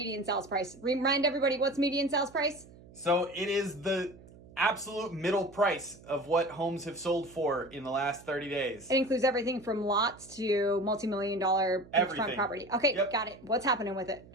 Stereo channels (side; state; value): right; noise; hum, 22 dB below the sound